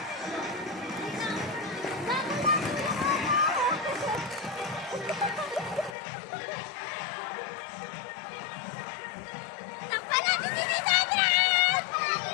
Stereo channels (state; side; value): drops out; right; at 6.0 s